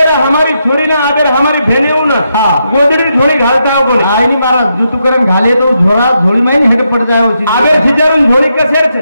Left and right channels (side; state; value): both; inverted; correlation -0.82